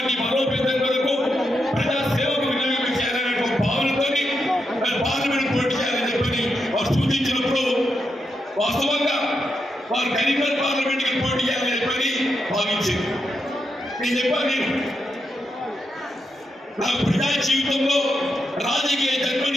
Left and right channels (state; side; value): normal; both; correlation 0.84